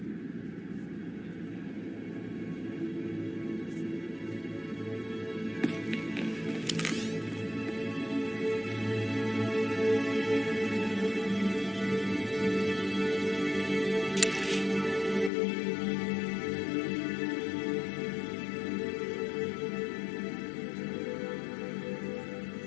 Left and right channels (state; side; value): drops out; right; at 15.3 s